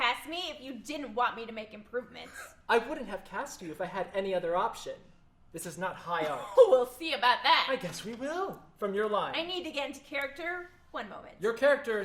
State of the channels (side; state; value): both; identical; correlation 1.00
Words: me if you didn't want me to make improvements. I wouldn't have cast you if I had any other option. This is not high art. We'll see about that. I guess we will. From your line. I need to get into character. One moment. Your character